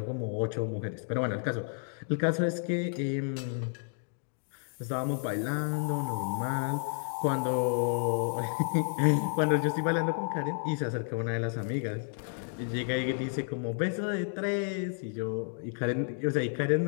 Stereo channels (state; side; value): silent; right; 57 dB below the other